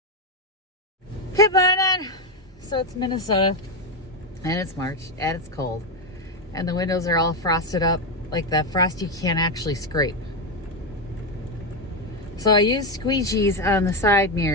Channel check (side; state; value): both; normal; correlation 0.09